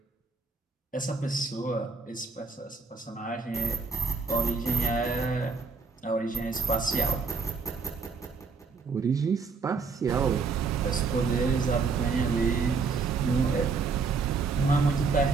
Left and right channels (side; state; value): left; quieter; 4.8 dB